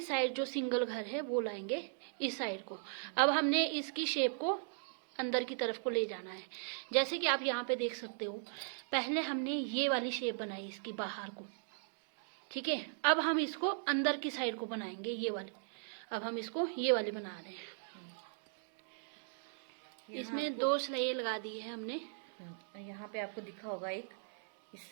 साइड जो सिंगल घर है वो लाएंगे इस साइड को। अब हमने इसकी शेप को अंदर की तरफ को ले जाना है। जैसे कि आप यहाँ पे देख सकते हो, पहले हमने ये वाली शेप बनाई इसकी बाहर को, ठीक है। अब हम इसको अंदर की साइड को बनाएंगे, ये वाली। अब हम इसको ये वाली बना रहे हैं। इसमें 2 सिलाई लगा दी है हमने। यहाँ पे आपको दिखा होगा एक इस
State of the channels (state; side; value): silent; left; digital silence